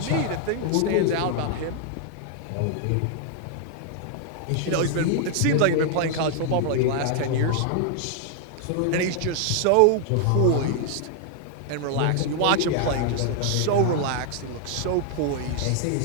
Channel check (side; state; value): both; different; correlation 0.00